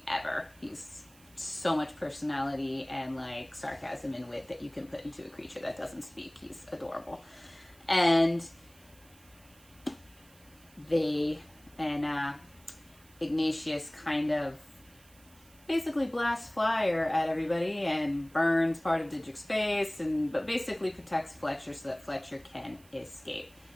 ever. He's so much personality and like sarcasm and wit that you can put into a creature that doesn't speak. He's adorable. And Ignatius kind of basically blasts fire at everybody and burns part of Didrik's face, but basically protects Fletcher so that Fletcher can escape.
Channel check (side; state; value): right; noise; hiss, 26 dB below the sound